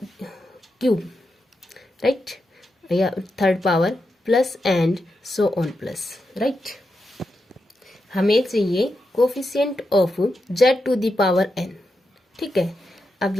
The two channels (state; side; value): normal; both; correlation 0.86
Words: cube, right, या third power plus and so on plus, right. हमें चाहिए coefficient of z to the power n, ठीक है। अब